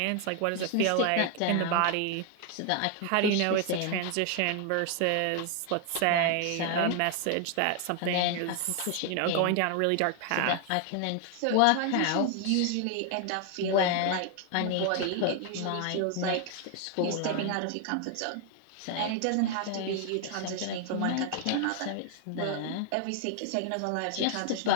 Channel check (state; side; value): different; both; correlation 0.00